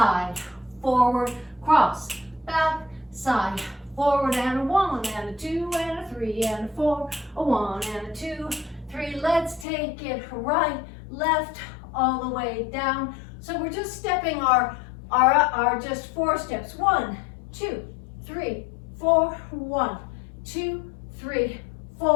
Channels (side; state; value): right; drops out; at 9.7 s